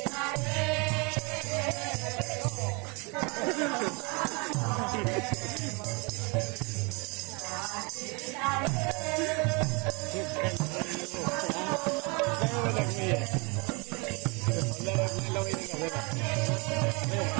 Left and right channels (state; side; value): quieter; left; 30.6 dB